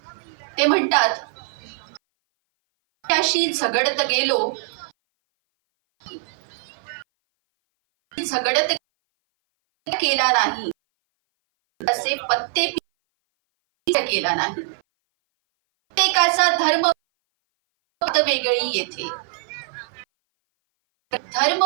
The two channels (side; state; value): left; silent; 58 dB below the other